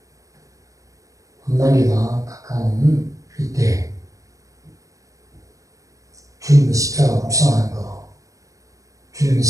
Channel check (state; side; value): late; left; 0.16 ms